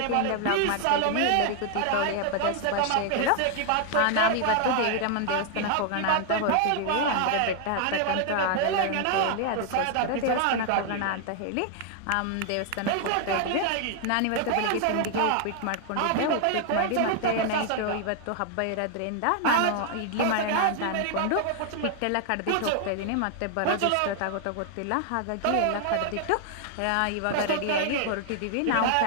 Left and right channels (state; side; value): different; both; correlation 0.00